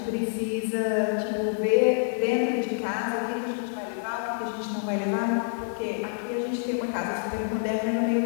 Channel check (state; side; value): silent; right; digital silence